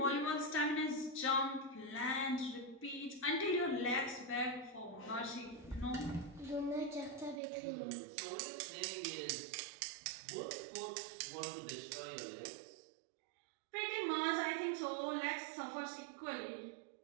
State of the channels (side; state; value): left; drops out; at 7.4 s